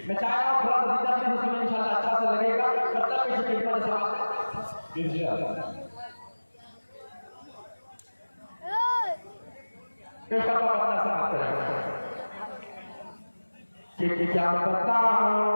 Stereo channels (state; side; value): inverted; both; correlation -1.00